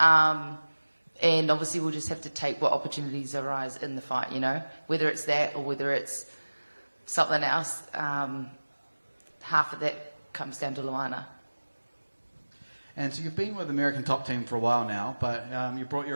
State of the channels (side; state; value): both; inverted; correlation -1.00